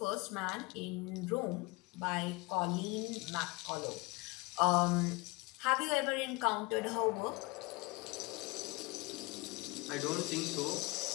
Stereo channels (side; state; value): right; quieter; 25.1 dB